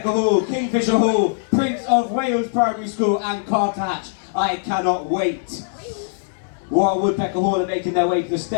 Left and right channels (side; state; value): right; silent; 65 dB below the other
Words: Hall, Kingfisher Hall, Prince of Wales Primary School and Carter Hatch. I cannot wait. While Woodpecker Hall are making their way to the